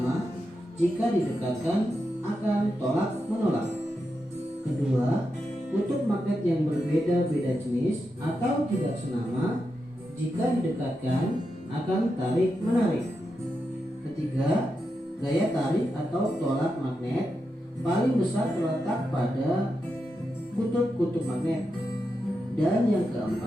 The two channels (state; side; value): normal; both; correlation 0.87